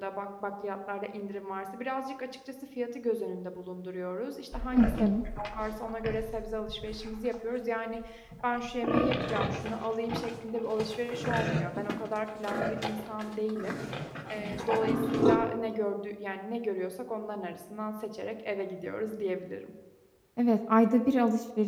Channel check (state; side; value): identical; both; correlation 1.00